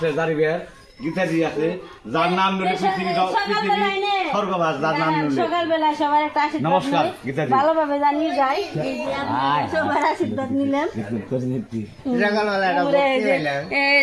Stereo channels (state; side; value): identical; both; correlation 1.00